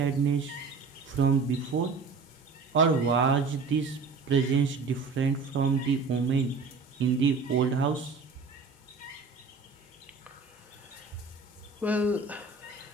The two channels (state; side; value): quieter; left; 4.6 dB